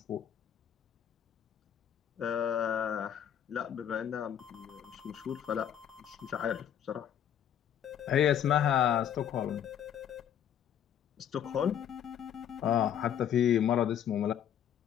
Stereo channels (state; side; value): quieter; right; 9.5 dB